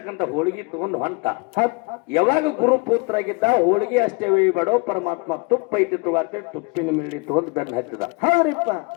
ಹೋಳಿಗೆ ತಗೊಂಡು ಹೊಂಟ. ಯಾವಾಗ ಗುರು ಪುತ್ರ ಆಗಿದ್ದ, ಹೋಳಿಗೆ ಅಷ್ಟೇ ಬೇಡೋ ಪರಮಾತ್ಮ ತುಪ್ಪ ಐತಿ ತಗೋತೇಳಿ ತುಪ್ಪಿನ ಮೇಲೆ ತಗೊಂಡು ಬೆನ್ನ ಹತ್ತಿದ.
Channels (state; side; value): quieter; right; 29.8 dB